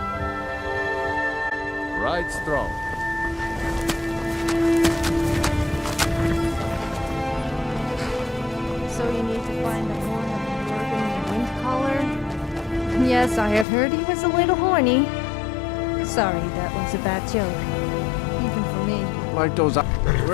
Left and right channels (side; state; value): right; drops out; at 13.7 s